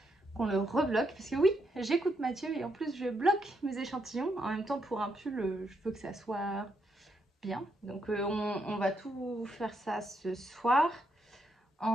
Qu'on le rebloque. Parce que oui, j'écoute Mathieu et en plus, je bloque mes échantillons. En même temps, pour un pull, je veux que ça soit bien. Donc, on va tout faire ça ce soir.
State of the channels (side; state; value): both; normal; correlation 0.79